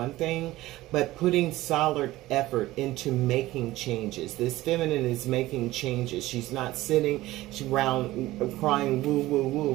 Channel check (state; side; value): quieter; left; 17.1 dB